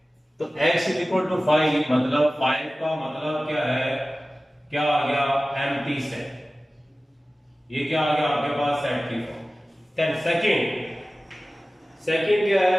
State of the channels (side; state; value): both; normal; correlation 0.97